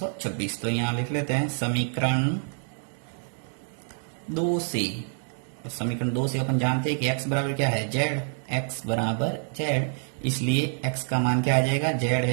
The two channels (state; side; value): silent; left; 60 dB below the other